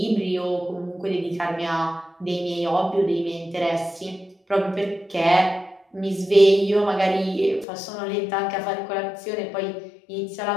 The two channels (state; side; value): drops out; right; at 7.7 s